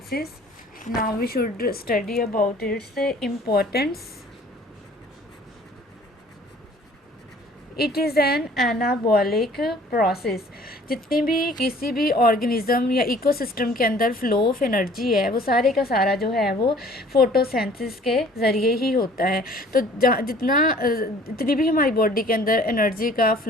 Now we should study about its importance. It is an anabolic process. जितनी भी किसी भी ऑर्गेनिज्म या इकोसिस्टम के अंदर फ्लो ऑफ एनर्जी है वो सारे का सारा जो है वो फोटोसिंथेसिस के ज़रिए ही होता है. तो जितनी भी हमारी बॉडी के अंदर एनर्जी का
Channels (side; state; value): both; normal; correlation 0.53